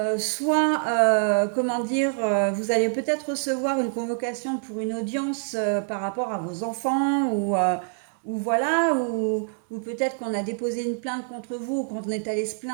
soit, comment dire, vous allez peut-être recevoir une convocation pour une audience par rapport à vos enfants ou voilà, ou peut-être qu'on a déposé une plainte contre vous ou qu'on est allé se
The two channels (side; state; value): left; silent; digital silence